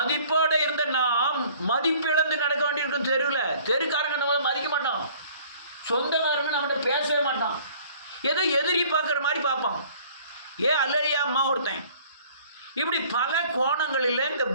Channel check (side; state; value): both; inverted; correlation -0.54